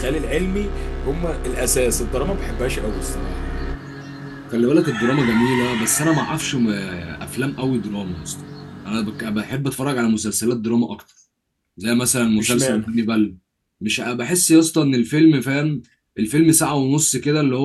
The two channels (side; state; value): both; identical; correlation 1.00